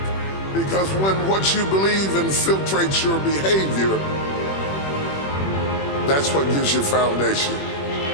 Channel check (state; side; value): late; right; 21 ms